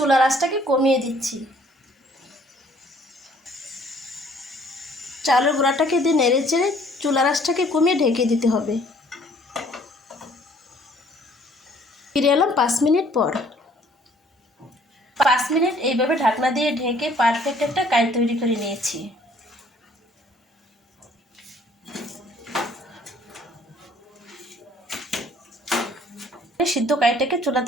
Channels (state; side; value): normal; both; correlation 0.59